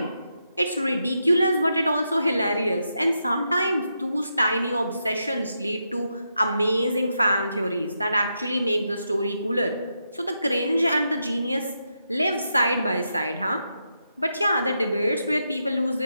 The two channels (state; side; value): inverted; both; correlation -0.84